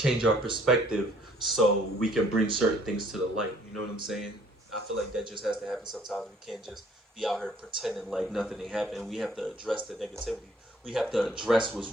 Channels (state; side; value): normal; both; correlation 0.60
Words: our perspective so we can bring certain things to the light. You know what I'm saying? I feel like that just has to happen sometimes. We can't just be out here pretending like nothing ain't happening. We have to address the negativity. We have to address what's